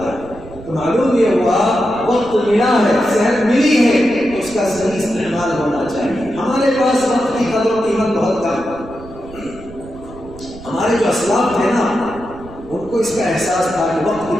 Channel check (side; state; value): right; noise; rumble, 18 dB below the sound